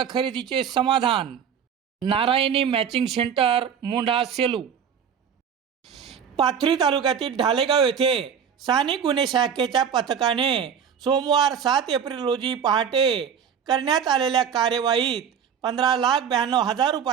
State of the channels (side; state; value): left; quieter; 7.7 dB